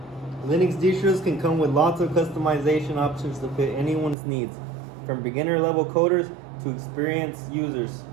Linux distros can come with lots of customization options to fit anyone's needs, from beginner level coders to experienced users.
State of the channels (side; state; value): left; drops out; at 4.2 s